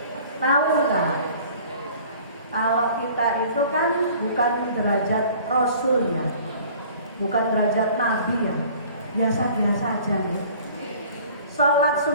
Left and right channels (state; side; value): inverted; both; correlation -0.49